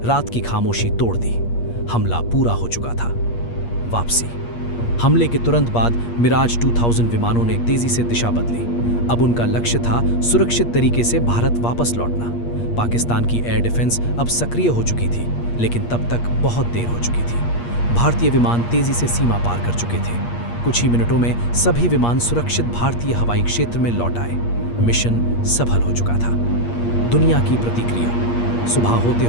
रात की खामोशी तोड़ दी। हमला पूरा हो चुका था। वापसी। हमले के तुरंत बाद मिराज 2000 विमानों ने तेजी से दिशा बदली। अब उनका लक्ष्य था सुरक्षित तरीके से भारत वापस लौटना। पाकिस्तान की एयर डिफेंस अब सक्रिय हो चुकी थी, लेकिन तब तक बहुत देर हो चुकी थी। भारतीय विमान तेजी से सीमा पार कर चुके थे। कुछ ही मिनटों में सभी विमान सुरक्षित भारतीय हवाई क्षेत्र में लौट आए। मिशन सफल हो चुका था। दुनिया की प्रतिक्रिया। सुबह होते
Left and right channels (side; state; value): right; late; 8.5 ms